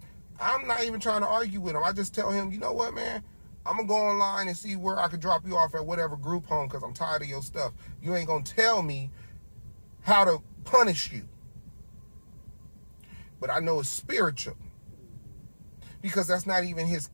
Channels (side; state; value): both; inverted; correlation -1.00